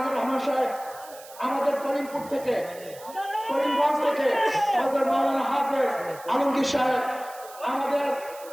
রহমান সাহেব আমাদের করিমপুর থেকে, করিমগঞ্জ থেকে হযরত মাওলানা হাফেজ আলমগীর সাহেব, আমাদের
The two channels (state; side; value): noise; right; hiss, 19 dB below the sound